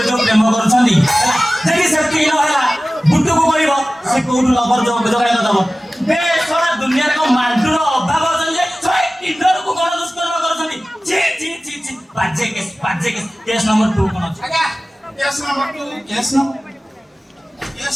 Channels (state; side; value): normal; both; correlation 0.97